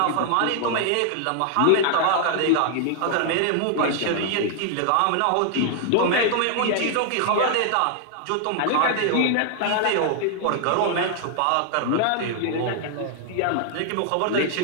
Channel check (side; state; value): both; different; correlation 0.00